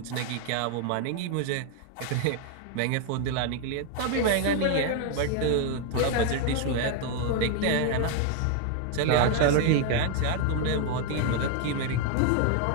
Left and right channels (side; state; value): both; different; correlation 0.00